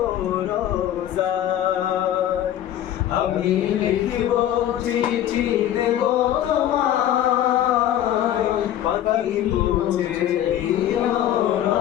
রোজায়। আমি লিখবো চিঠি দেব তোমায়, পাখি পৌঁছে দিও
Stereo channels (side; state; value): right; quieter; 11.7 dB